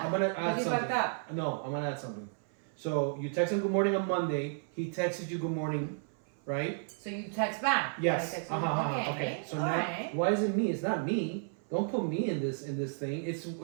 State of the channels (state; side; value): silent; left; 56 dB below the other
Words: I'm gonna but add you something. fucked up. No, I'm gonna add something. So you text him good morning on Monday. He texts you good morning, right? So you text back. Yes. I text you, okay. So all now, right. why is it me? It's not me. Don't put me in this thing.